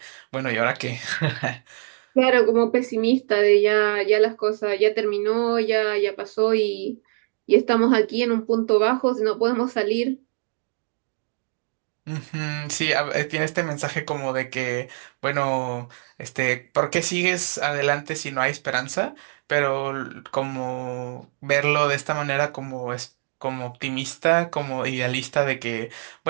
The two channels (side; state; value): left; silent; digital silence